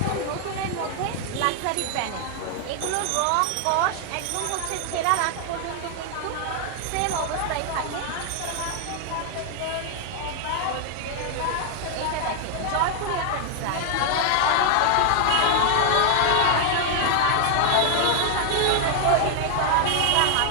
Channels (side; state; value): both; different; correlation 0.00